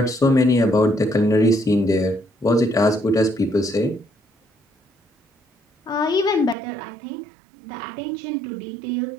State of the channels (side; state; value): left; drops out; at 6.6 s